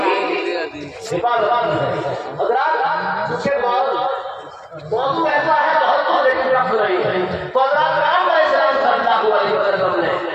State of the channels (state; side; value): identical; both; correlation 1.00